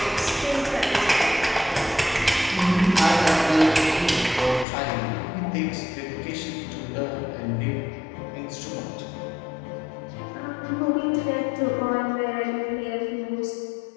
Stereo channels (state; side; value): drops out; right; at 4.7 s